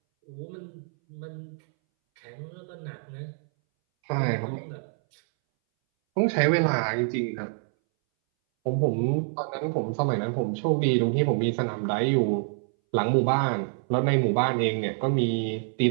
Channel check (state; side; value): silent; left; 60 dB below the other